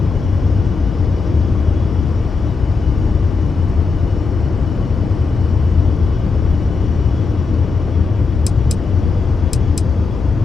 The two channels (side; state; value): right; quieter; 4.5 dB